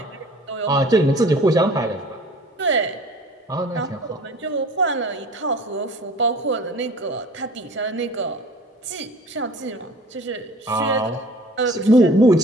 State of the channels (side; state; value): both; normal; correlation 0.47